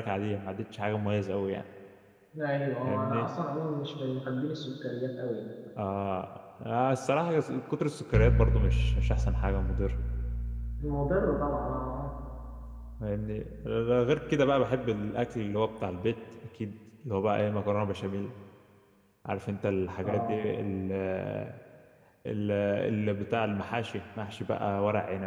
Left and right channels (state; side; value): identical; both; correlation 1.00